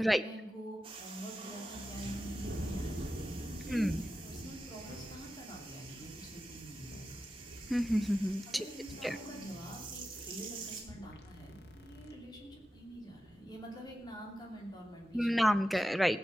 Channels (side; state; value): both; normal; correlation 0.91